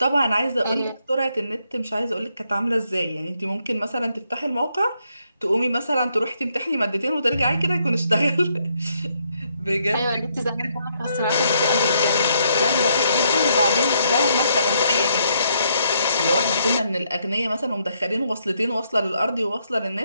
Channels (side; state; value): both; inverted; correlation -0.74